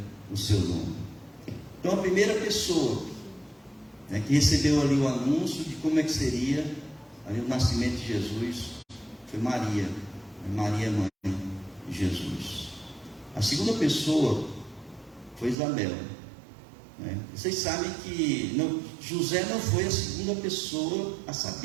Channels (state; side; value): drops out; left; at 15.6 s